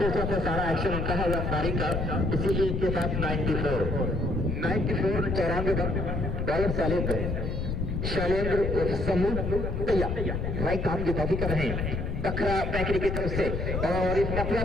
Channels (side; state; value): left; noise; rumble, 2 dB below the sound